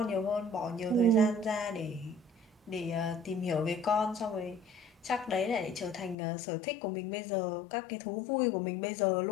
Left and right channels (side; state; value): right; drops out; at 6.2 s